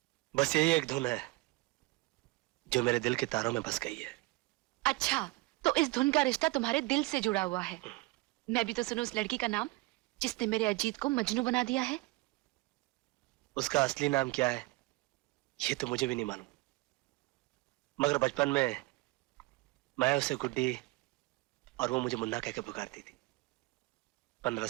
बस यही एक धुन है जो मेरे दिल के तारों में बस गई है। अच्छा, तो इस धुन का रिश्ता तुम्हारे दिल से जुड़ा हुआ है। मैं भी तो सुनूं उस लड़की का नाम जिसने मेरे अजीत को मजनू बना दिया है। उसका असली नाम क्या है ये तो मुझे भी नहीं मालूम, मगर बचपन में मैं उसे गुड्डी और वो मुझे मुन्ना कह के पुकारती थी। 15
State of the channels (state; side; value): quieter; left; 22.0 dB